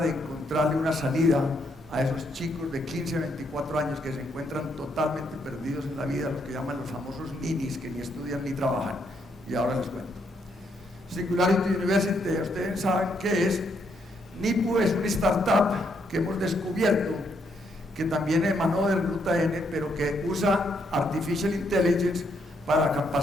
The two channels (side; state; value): both; normal; correlation 0.75